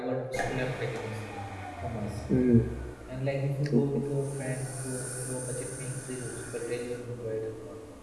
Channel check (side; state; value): both; identical; correlation 1.00